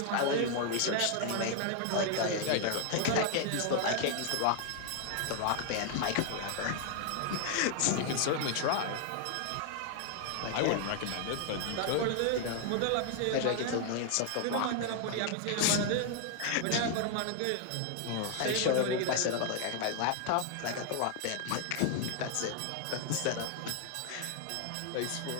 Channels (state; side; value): different; both; correlation 0.00